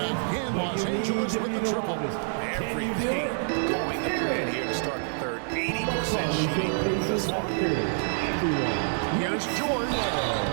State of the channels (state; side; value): silent; left; digital silence